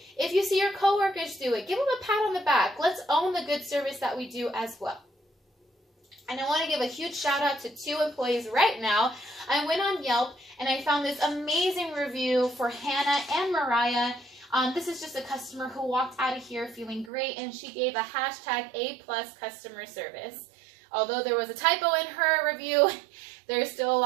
If you see your coworkers do it, give them a pat on the back. Let's own the good service that we do as well. And I want to give a huge shout out to 2 employees right now. I went on Yelp and I found this amazing review for Hannah and Mariah. This is just a customer who walked out of here feeling great, and she gave a hashtag A+ customer service. Although there was a typo in her review, there's still a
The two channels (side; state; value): left; drops out; at 17.1 s